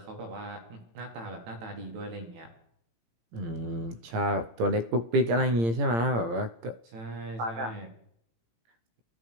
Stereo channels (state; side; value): late; left; 18 ms